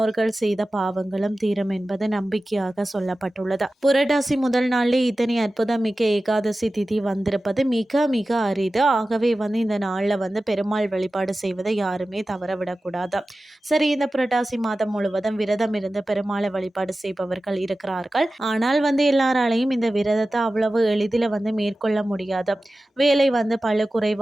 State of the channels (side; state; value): both; normal; correlation 0.95